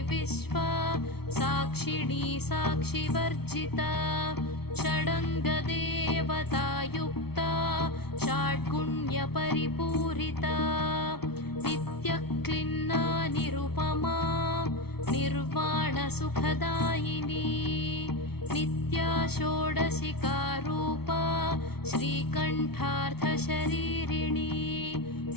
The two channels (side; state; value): right; late; 0.96 ms